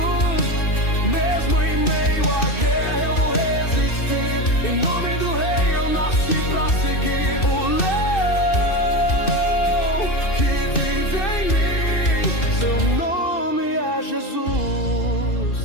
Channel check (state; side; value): late; right; 2.6 ms